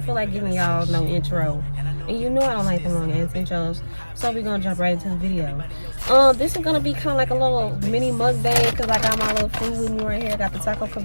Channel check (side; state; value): both; inverted; correlation -1.00